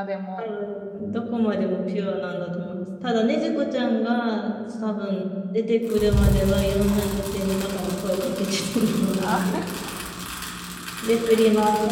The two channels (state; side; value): identical; both; correlation 1.00